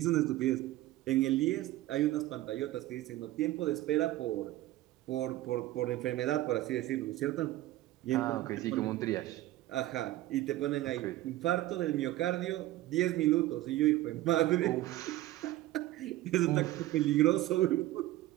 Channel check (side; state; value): left; quieter; 15.9 dB